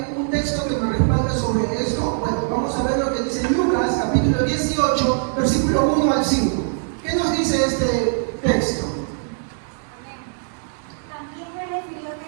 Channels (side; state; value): left; silent; 64 dB below the other